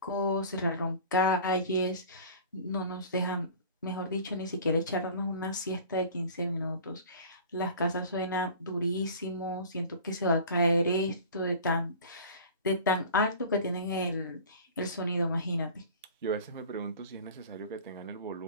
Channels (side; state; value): both; inverted; correlation -0.41